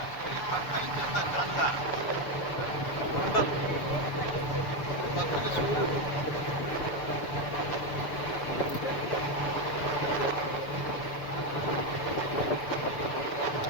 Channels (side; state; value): right; late; 6.9 ms